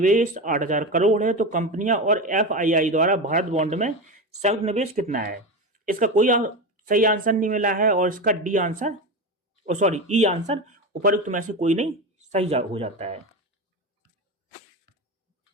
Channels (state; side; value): normal; both; correlation 0.20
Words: 8,000 करोड़ है तो कंपनियां और एफआईआई द्वारा भारत बॉन्ड में संयुक्त निवेश कितना है? इसका कोई सही आंसर नहीं मिला है और इसका डी आंसर ई आंसर उपरोक्त में से कोई नहीं सही हो जाता है।